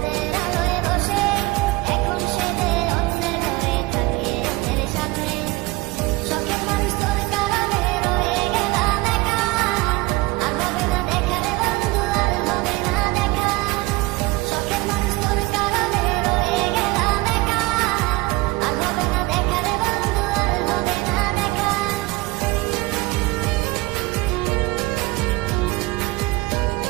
আলোয় বসে, এখন সে যে অন্যের ঘরে থাকে অন্যের সাথে। শখের মানুষ তোর কারণে রয়ে গেলাম একা, আর হবে না দেখা রে বন্ধু, আর হবে না দেখা। শখের মানুষ তোর কারণে রয়ে গেলাম একা, আর হবে না দেখা রে বন্ধু, আর হবে না দেখা।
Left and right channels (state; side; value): quieter; left; 21.7 dB